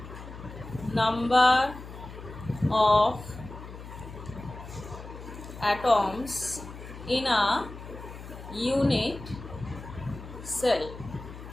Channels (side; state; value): left; noise; hum, 13 dB below the sound